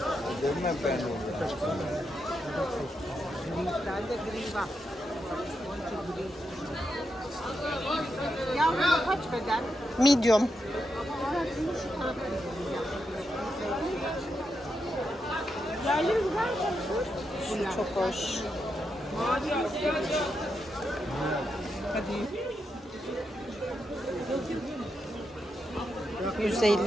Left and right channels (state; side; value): normal; both; correlation 0.84